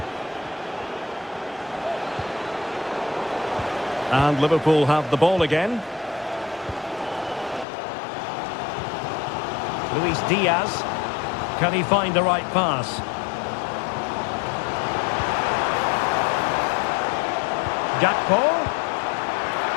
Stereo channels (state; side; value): drops out; right; at 7.7 s